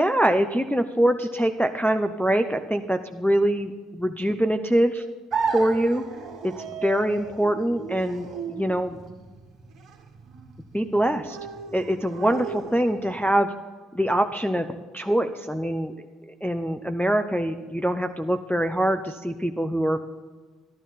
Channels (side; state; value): both; normal; correlation 0.91